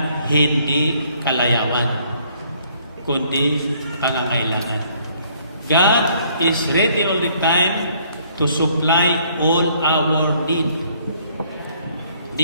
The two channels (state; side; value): inverted; both; correlation -0.64